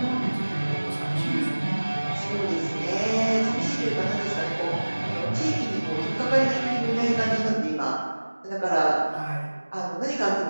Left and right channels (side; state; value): both; inverted; correlation -1.00